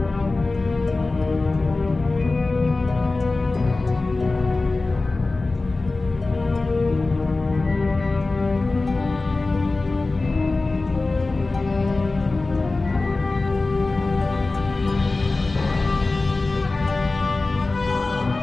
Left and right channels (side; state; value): right; quieter; 3.4 dB